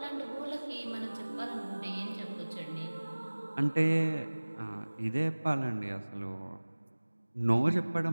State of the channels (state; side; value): inverted; both; correlation -1.00